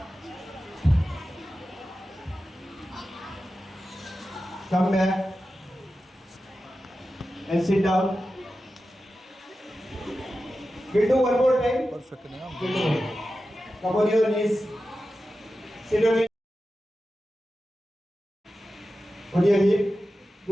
Come back and sit down. We'll do one more time. Perfect. Come on your knees. Sit on it. On your hip.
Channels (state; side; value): normal; both; correlation 0.93